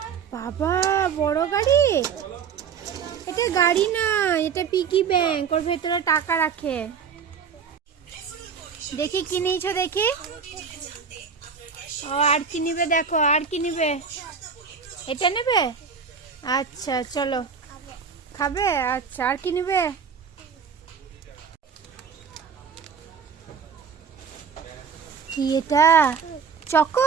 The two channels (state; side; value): quieter; left; 6.4 dB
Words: বাবা, বড় গাড়ি। এটা গাড়ি না, এটা পিগি ব্যাংক, ওর ভেতরে টাকা রাখে। দেখি কি নিয়েছো দেখি। ও আর কি নিবে দেখো, আর কি নিবে? এটা নেবে? আচ্ছা চলো। খাবে? আচ্ছা, আর কি নিবে? কি এটা?